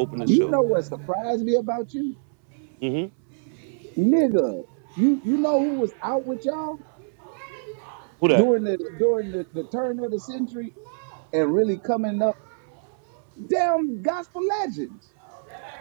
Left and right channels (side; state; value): left; silent; 62 dB below the other